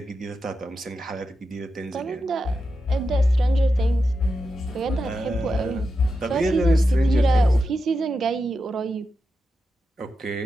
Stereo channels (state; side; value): normal; both; correlation 0.89